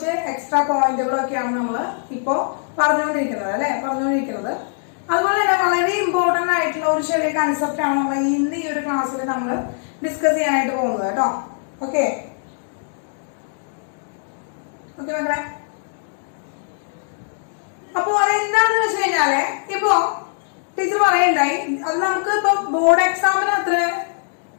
എക്സ്ട്രാ പോയിന്റുകളൊക്കെയാണ് നമ്മൾ ഇപ്പോ പറഞ്ഞുകൊണ്ടിരിക്കുന്നത് അല്ലെ, അതുപോലെ തന്നെ വളരെ ഇമ്പോർട്ടന്റ് ആയിട്ടുള്ള ഒരു ചെറിയ കൺസെപ്റ്റ് ആണ് നമ്മൾ ഇന്ന് ഈ ഒരു ക്ലാസ്സിൽ നമ്മൾ ഡിസ്കസ് ചെയ്യാനായിട്ട് പോകുന്നത് കേട്ടോ. ഓക്കെ മക്കളെ, അപ്പൊ അതെന്താണെന്ന് വെച്ച് കഴിഞ്ഞാല് ഇപ്പോ ടീച്ചർ പറയണ്ടായി, അത് നമുക്ക് ഇപ്പൊ ബോർഡ് എക്സാമിന് അത്ര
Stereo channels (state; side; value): silent; right; 65 dB below the other